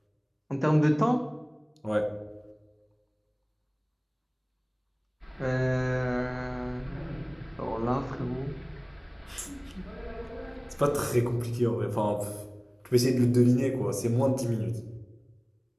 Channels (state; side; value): identical; both; correlation 1.00